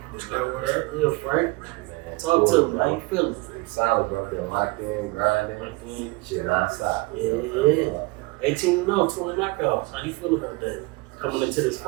that word? Yeah, Frank. Man, Talk cool, to me. How you feeling? I'm solid, bro. Been locked in, grinding. Shit non-stop. Yeah. 18-0, 20 knockouts. How you feel about that? Coming into this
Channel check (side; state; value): left; quieter; 24.3 dB